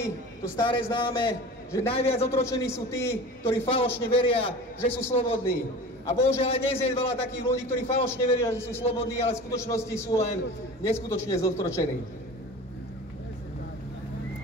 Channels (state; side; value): normal; both; correlation 0.36